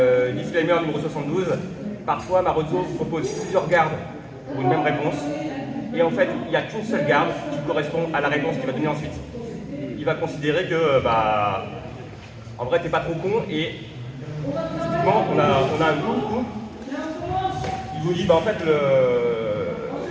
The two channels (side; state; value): both; identical; correlation 1.00